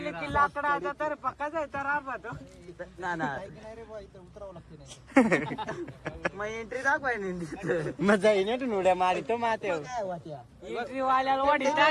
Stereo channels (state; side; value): identical; both; correlation 1.00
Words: की लाकडाचा तर पक्का जायचा राहतो ना ना नाही रे बा इथं उतरावं लागते नाही मग एंट्री दाखवाय मग जाईन ना तू उड्या मारितो माते काय वाट्या एंट्री वाल्याला वाढी